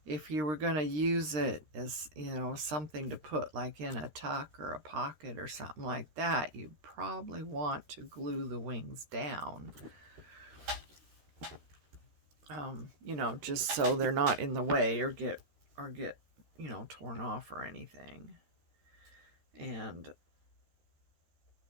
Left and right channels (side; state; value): left; late; 13 ms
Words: If you were going to use it as, you know, something to put like in a tuck or a pocket or something like that, you probably want to glue the wings down. You know, just so they're not in the way or get, you know, torn off or anything. And of